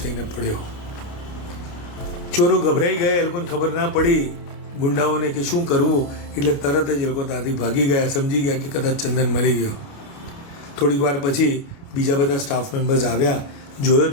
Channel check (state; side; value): late; right; 29 ms